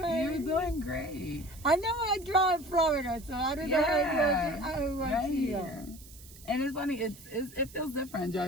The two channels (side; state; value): right; noise; hiss, 20 dB below the sound